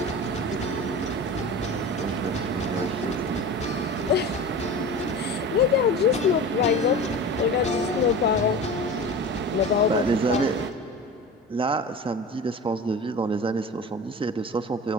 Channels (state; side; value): normal; both; correlation 0.33